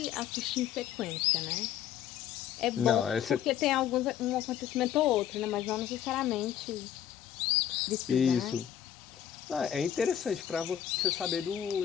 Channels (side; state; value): right; quieter; 10.2 dB